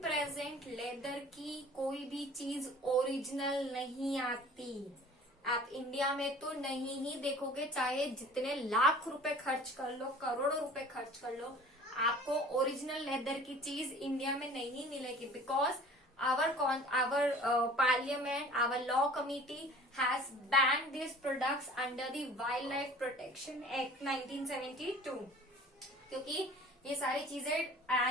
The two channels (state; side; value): normal; both; correlation 0.47